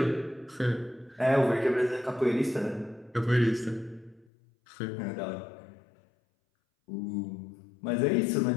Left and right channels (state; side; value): drops out; right; at 4.2 s